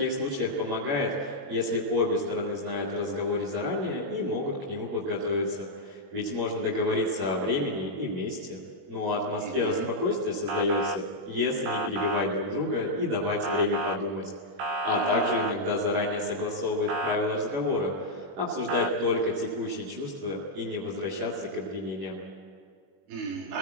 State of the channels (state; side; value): late; left; 21 ms